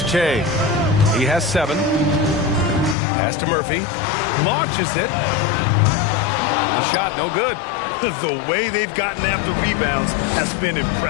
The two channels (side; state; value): right; drops out; at 3.0 s